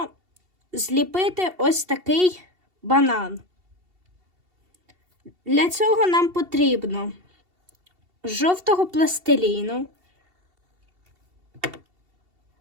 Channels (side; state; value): left; late; 2.7 ms